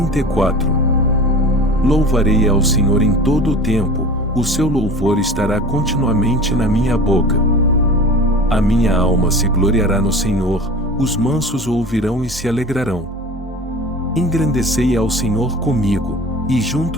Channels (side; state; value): both; normal; correlation 0.37